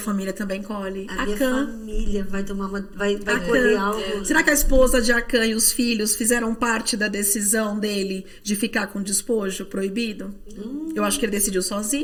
também colhe. a minha Acã. família vai tomar vai Acã. colher algo. Será que a esposa de Acã e os filhos fizeram parte da decisão dele de ficar com despojo proibido? Eu acho que ele decidiu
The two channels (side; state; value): both; identical; correlation 1.00